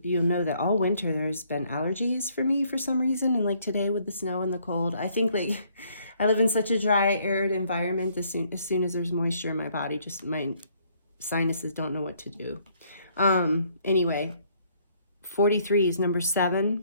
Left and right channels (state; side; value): inverted; both; correlation -0.66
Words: know that all winter there's been allergies for me for some reason. And like today with the snow and the cold, I think like I live in such a dry, arid environment. As soon as there's moisture in my body, just my sinuses don't know what to do. Anyway, 43 is number